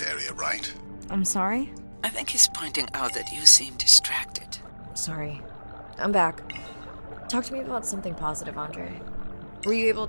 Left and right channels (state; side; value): inverted; both; correlation -1.00